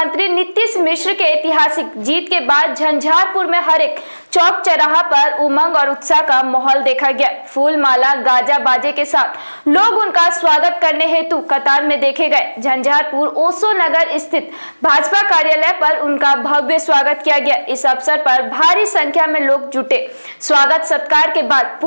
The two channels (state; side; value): inverted; both; correlation -1.00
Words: नीतीश मिश्र के ऐतिहासिक जीत के बाद झंझारपुर में हर एक चौक चौराहा पर उमंग और उत्साह का माहौल देखा गया। फूल माला गाजा बाजे के साथ लोग उनका स्वागत करने हेतु कतार में देखे गए। झंझारपुर ओशो नगर स्थित भाजपा कार्यालय पर उनका भव्य स्वागत किया गया। इस अवसर पर भारी संख्या में लोग जुटे। स्वागत सत्कार के बाद